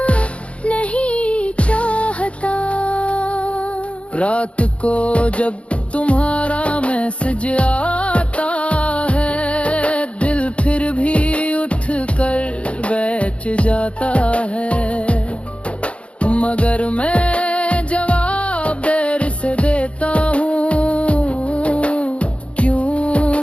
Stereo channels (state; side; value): late; right; 0.061 ms